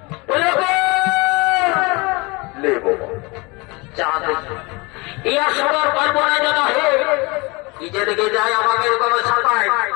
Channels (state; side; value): quieter; right; 26.3 dB